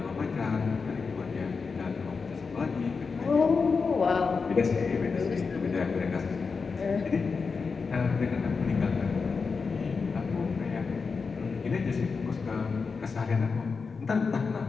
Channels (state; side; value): quieter; right; 4.9 dB